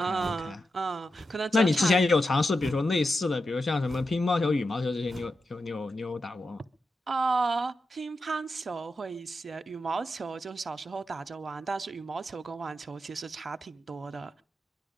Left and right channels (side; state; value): both; normal; correlation 0.88